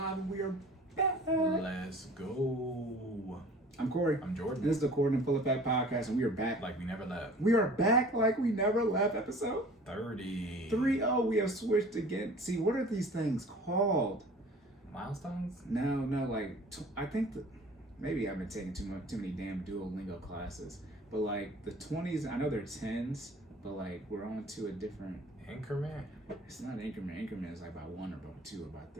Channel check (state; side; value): normal; both; correlation 0.46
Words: and we are back. Let's go. I'm Cory. I'm Jordan. This is the Cordan Full Effect Podcast, and we are back. Like we never left. We are back like we never left. Episode 30. 30. We have switched again. See, what are these things called? Milestones? No. Like, I think that maybe I've been taking too many damn Duolingo classes. But like the 20s, I know they're 10s, but like we're on to a different Increment? It's not an increment. Increment is like by 1 or by 2 or by